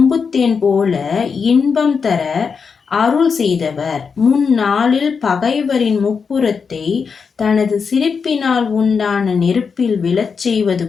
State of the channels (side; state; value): right; quieter; 5.7 dB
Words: போல இன்பம் தர அருள் செய்தவர். முன்னாளில் பகைவரின் முப்புறத்தை தனது சிரிப்பினால் உண்டான நெருப்பில் விழச் செய்வது